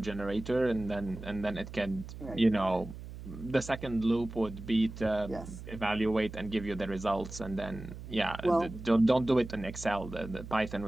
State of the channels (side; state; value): right; noise; hum, 12 dB below the sound